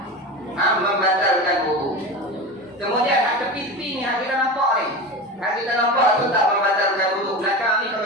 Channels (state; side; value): normal; both; correlation 0.27